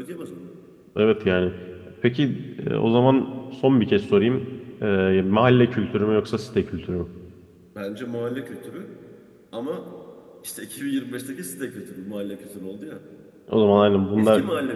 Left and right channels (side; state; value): both; identical; correlation 1.00